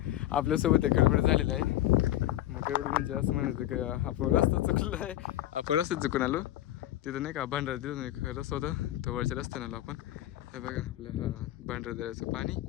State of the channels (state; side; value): quieter; right; 14.1 dB